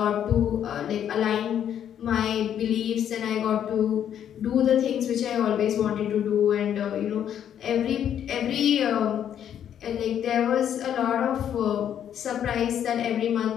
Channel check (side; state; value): right; quieter; 9.6 dB